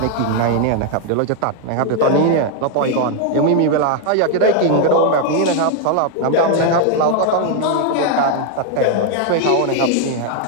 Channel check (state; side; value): different; both; correlation 0.00